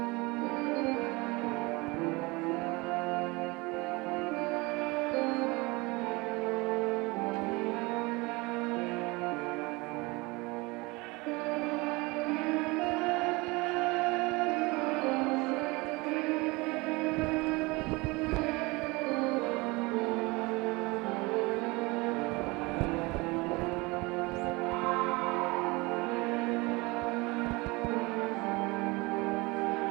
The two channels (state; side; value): quieter; left; 24.5 dB